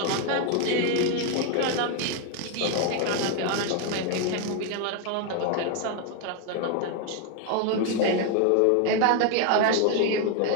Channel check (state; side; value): different; both; correlation 0.01